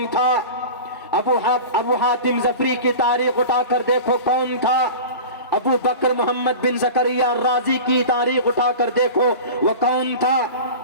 تھا، ابو حاتم ظفری کی تاریخ اٹھا کر دیکھو کون تھا، ابو بکر محمد بن زکریا الرازی کی تاریخ اٹھا کر دیکھو وہ کون تھا،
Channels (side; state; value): both; inverted; correlation -0.32